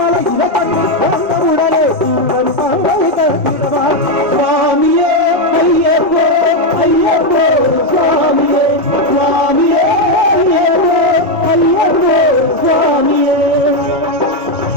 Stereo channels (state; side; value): normal; both; correlation 0.05